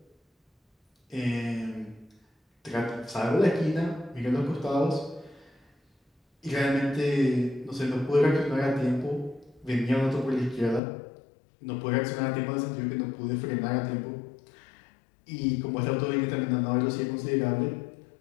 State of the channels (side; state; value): right; drops out; at 10.8 s